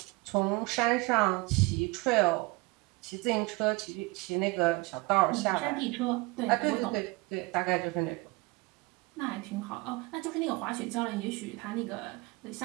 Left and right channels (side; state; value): left; quieter; 24.9 dB